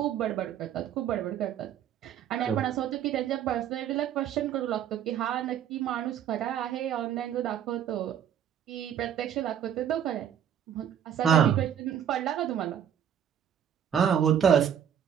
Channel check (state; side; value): quieter; left; 9.2 dB